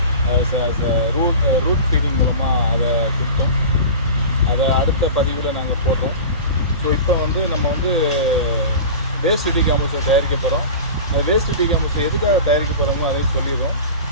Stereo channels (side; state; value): both; inverted; correlation -0.33